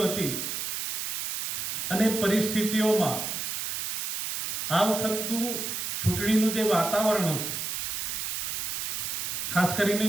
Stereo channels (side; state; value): right; noise; hiss, 2 dB below the sound